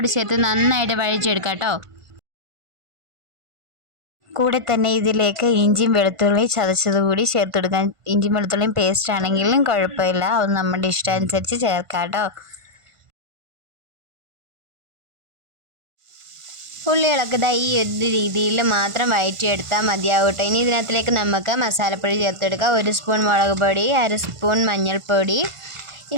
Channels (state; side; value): late; left; 1.5 ms